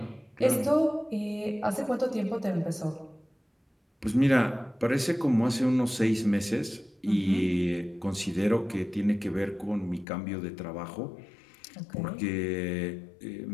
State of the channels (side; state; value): right; drops out; at 10.1 s